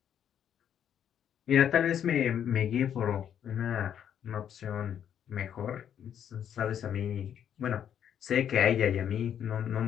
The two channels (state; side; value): quieter; right; 9.2 dB